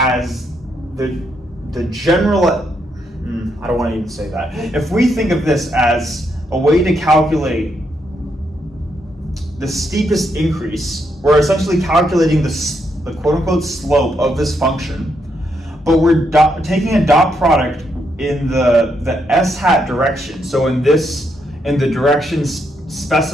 the general, I don't want to even say that. If we think of this as a way to calculate the steepest increase, we're essentially calculating the quote-unquote slope of this function, but we're taking a dot product in the s hat direction. So in the directions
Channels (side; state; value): both; normal; correlation 0.78